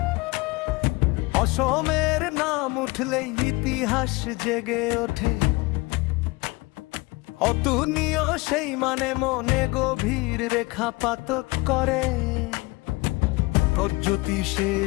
নাম উঠলেই ইতিহাস জেগে ওঠে, অতুলনীয় সেই মানে মনে গভীর রেখাপাত করে।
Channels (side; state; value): right; quieter; 24.2 dB